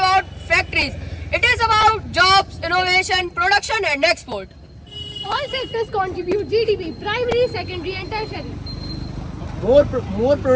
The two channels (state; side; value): identical; both; correlation 1.00